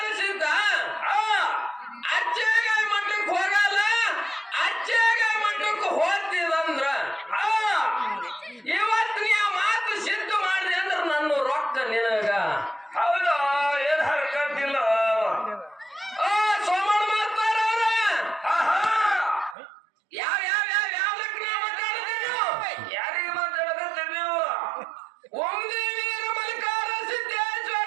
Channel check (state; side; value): drops out; left; at 19.6 s